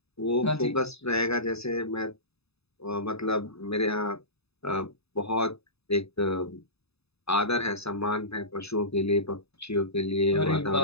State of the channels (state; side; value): late; right; 0.79 ms